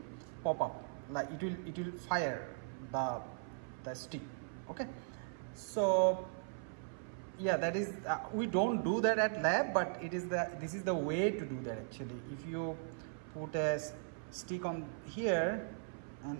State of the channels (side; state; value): left; silent; 52 dB below the other